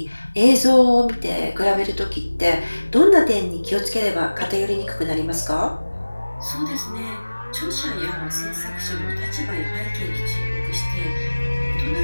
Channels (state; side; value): inverted; both; correlation -1.00